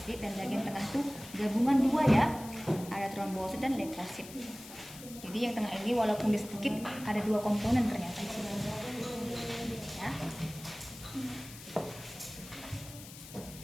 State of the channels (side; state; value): left; noise; hiss, 15 dB below the sound